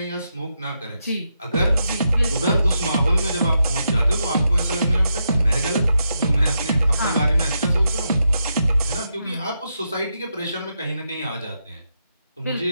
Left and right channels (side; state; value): both; inverted; correlation -0.84